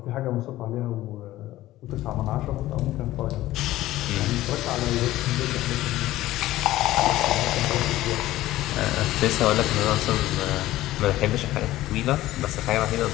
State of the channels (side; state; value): right; quieter; 15.7 dB